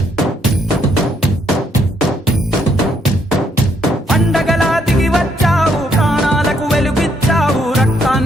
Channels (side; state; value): both; normal; correlation 0.72